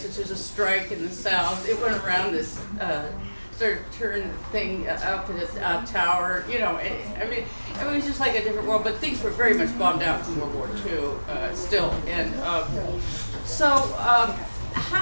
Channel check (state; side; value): inverted; both; correlation -1.00